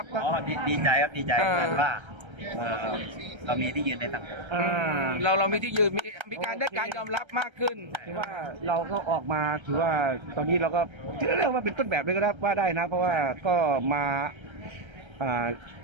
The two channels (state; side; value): late; left; 1.3 ms